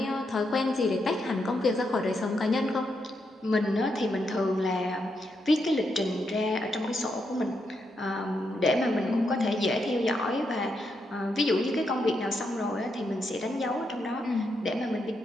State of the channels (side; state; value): both; normal; correlation 0.81